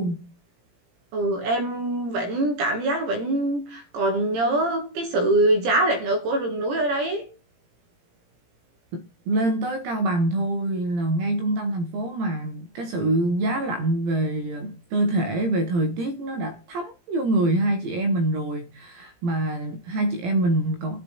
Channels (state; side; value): late; left; 17 ms